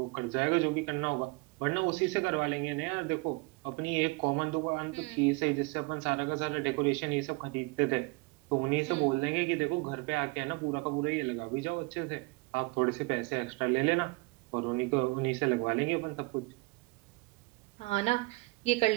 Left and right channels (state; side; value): quieter; left; 26.4 dB